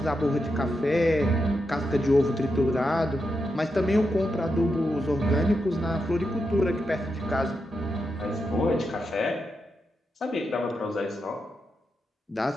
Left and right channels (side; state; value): both; normal; correlation 0.86